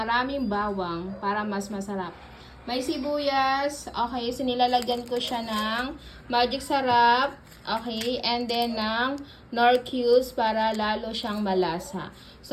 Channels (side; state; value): both; identical; correlation 1.00